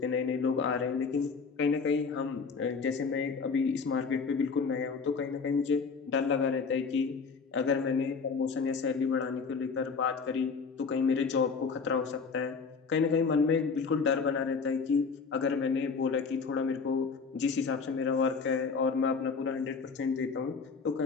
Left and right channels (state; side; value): quieter; right; 5.1 dB